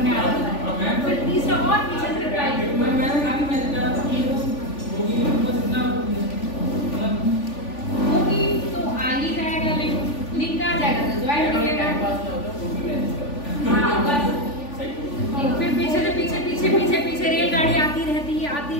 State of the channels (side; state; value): right; late; 3.5 ms